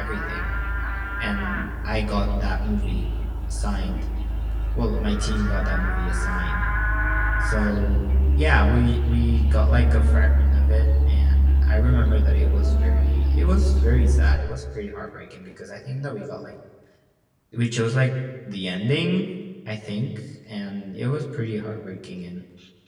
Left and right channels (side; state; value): both; identical; correlation 1.00